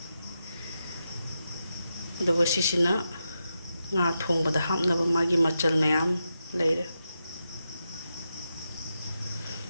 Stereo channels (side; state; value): both; inverted; correlation -0.87